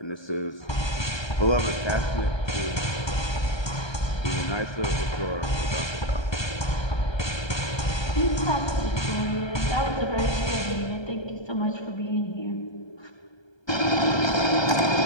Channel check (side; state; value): right; late; 1.3 ms